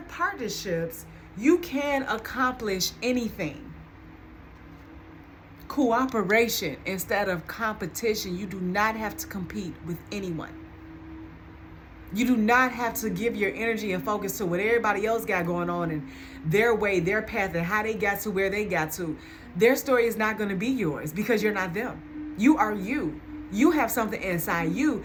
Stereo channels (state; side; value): identical; both; correlation 1.00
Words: partnerships, you can accomplish anything. Cooperation instead of competition. You do not have to compete with anyone. You do not have to give your energy and focus to what everybody else got going on and their way, their path, and how they got to where they got to. Their story is not going to be yours because you're not them. You are you. You have something inside you